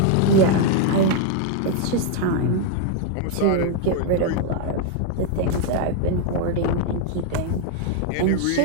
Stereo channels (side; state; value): both; different; correlation 0.00